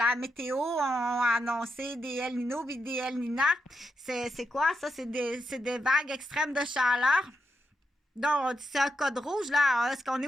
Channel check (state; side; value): normal; both; correlation 0.84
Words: météo ont annoncé des El Nino puis des El Nina, c'est quoi ça? C'est des vagues extrêmes de chaleur. Donc, c'est un code rouge, là. Est-ce qu'on est